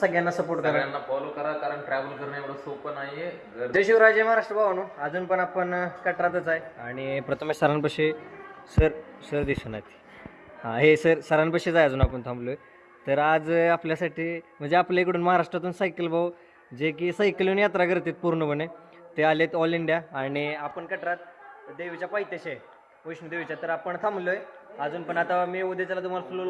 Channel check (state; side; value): identical; both; correlation 1.00